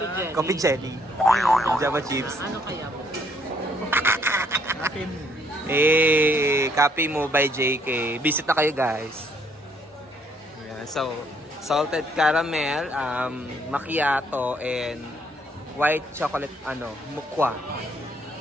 jelly. Java chips. Ano kaya po? Copy mo by JK. Visit na kayo guys. Yeah, so, salted caramel, macchiato, and white chocolate, mukwa.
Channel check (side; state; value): both; normal; correlation 0.67